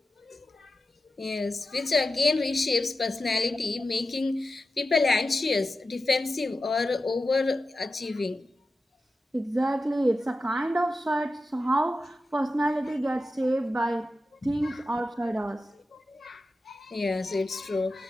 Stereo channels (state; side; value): normal; both; correlation 0.92